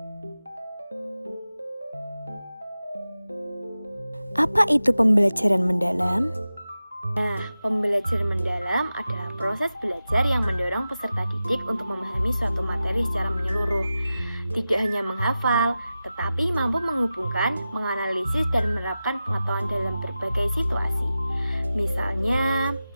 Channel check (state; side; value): inverted; both; correlation -0.94